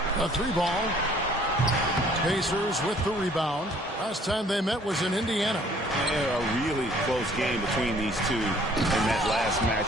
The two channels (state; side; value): normal; both; correlation 0.57